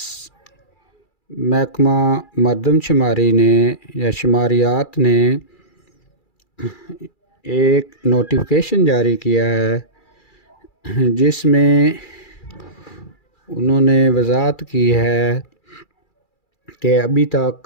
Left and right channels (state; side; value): late; right; 2.3 ms